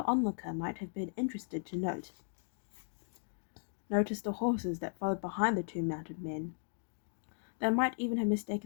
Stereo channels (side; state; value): right; silent; digital silence